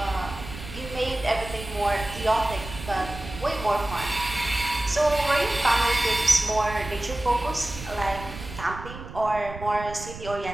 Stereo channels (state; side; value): noise; right; rumble, 12 dB below the sound